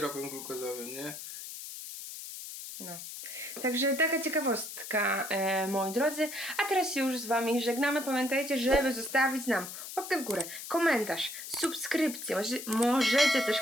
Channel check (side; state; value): left; noise; hiss, 10 dB below the sound